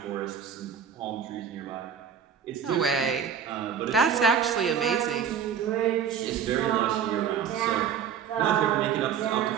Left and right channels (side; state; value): left; quieter; 7.8 dB